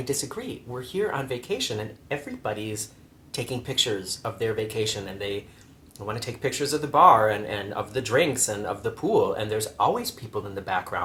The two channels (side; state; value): both; identical; correlation 1.00